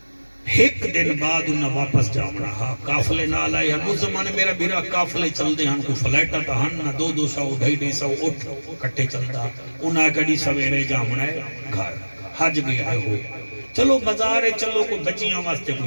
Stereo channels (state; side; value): inverted; both; correlation -1.00